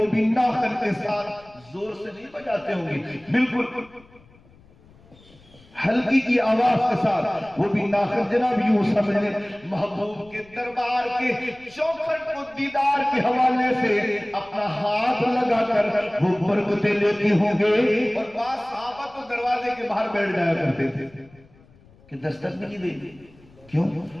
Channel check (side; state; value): left; noise; rumble, 27 dB below the sound